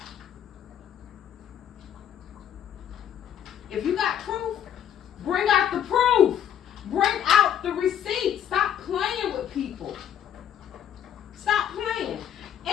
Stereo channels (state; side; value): quieter; right; 9.7 dB